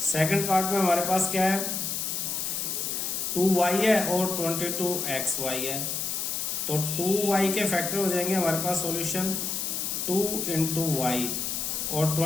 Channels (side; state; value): left; noise; hiss, 2 dB below the sound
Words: सेकंड पार्ट में हमारे पास क्या है, 2y है और 22xy है। तो 2y के फैक्टर हो जाएंगे हमारे पास सॉल्यूशन 2 इंटू वाई और